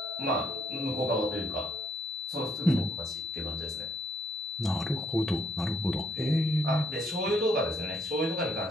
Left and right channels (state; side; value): normal; both; correlation 0.71